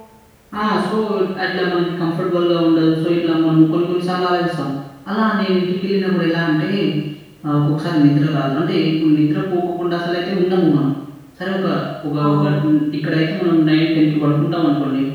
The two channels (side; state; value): both; identical; correlation 1.00